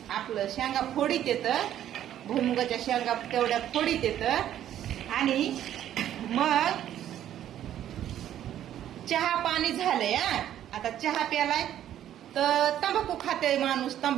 आपलं शेंगा फोडीत येत. भुईमुगाच्या शेंगा तेवढ्या फोडीत येत. आणि मग चहा पाणी झालंय. आता चहा प्यालाय तर तंबाखू खाते माणूस.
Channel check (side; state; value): left; quieter; 11.3 dB